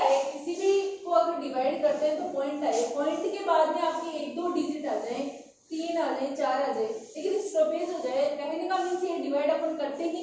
किसी भी को अगर डिवाइड करते हैं तो पॉइंट आए, पॉइंट के बाद में आपकी 1-2 डिजिट आ जाए, 3 आ जाए, 4 आ जाए, लेकिन स्टॉपेज हो जाए, कहने का मीन्स ये डिवाइड अपन करते ही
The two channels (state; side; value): identical; both; correlation 1.00